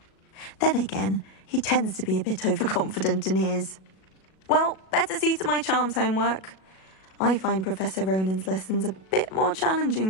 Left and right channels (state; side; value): late; right; 37 ms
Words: Then again, he tends to be a bit overconfident in his. Well, better see to my charms homework. I find Professor Ronan's lessons a bit more challenging